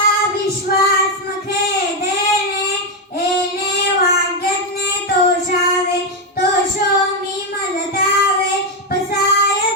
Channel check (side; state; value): both; normal; correlation 0.05